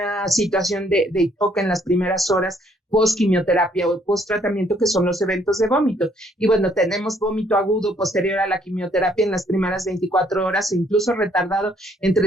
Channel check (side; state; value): both; normal; correlation 0.66